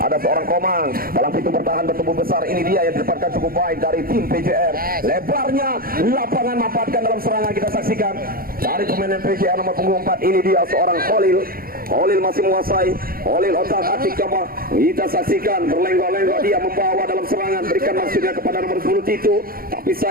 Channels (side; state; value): left; late; 0.42 ms